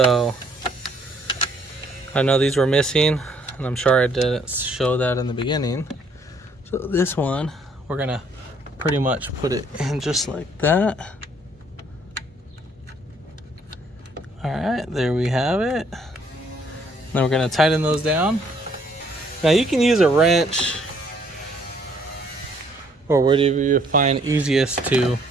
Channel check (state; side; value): normal; both; correlation 0.65